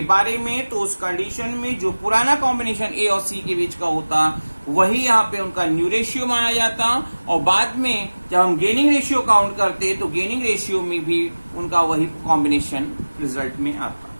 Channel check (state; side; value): inverted; both; correlation -1.00